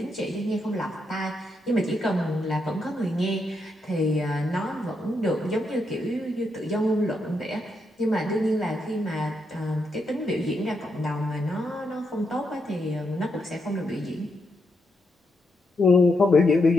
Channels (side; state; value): both; normal; correlation 0.81